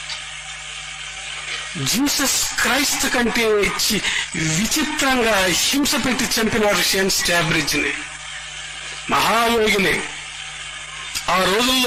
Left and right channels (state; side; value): identical; both; correlation 1.00